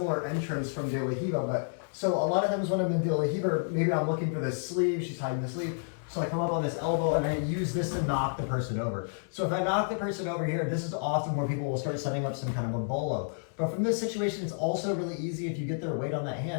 entrance from De La Riva, but so a lot of times when I'm in De La Riva, maybe I'm looking for this sleeve, she's hiding the sleeve. So I come up on this elbow and I use this to knock the person over. So if I knock the person over here, this is often where people will start setting up some kind of a bolo. But from this situation, it's also really easy if you get their weight on that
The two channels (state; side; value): silent; right; digital silence